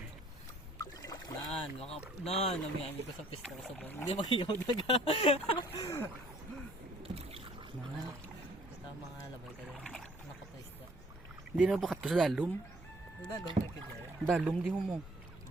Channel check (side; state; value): right; noise; hum, 23 dB below the sound